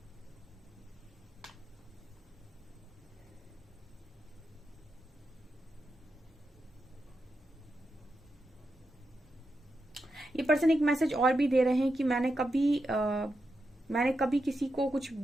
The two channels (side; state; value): both; normal; correlation 0.87